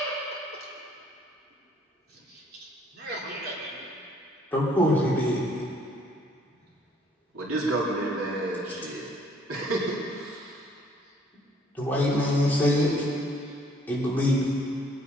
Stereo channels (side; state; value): both; normal; correlation 0.62